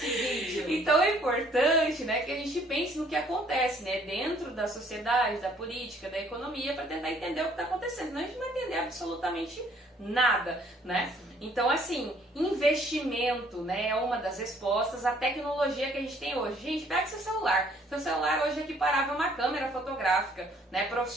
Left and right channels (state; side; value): normal; both; correlation 0.61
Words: vídeo. Então é importante, né, que a gente pense no que acontece, né, dentro da sociedade, da política, da economia, para tentar entender o que está acontecendo. Senão a gente não vai entender absolutamente nada, né? Então, assim, investimento, né, é uma das respostas. A tecnologia que a gente tem hoje. Gente, pega seu celular. Seu celular hoje é equiparável a uma câmera fotográfica, né,